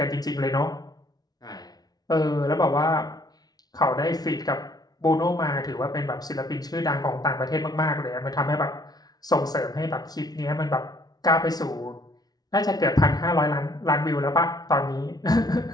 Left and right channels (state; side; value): late; right; 0.19 ms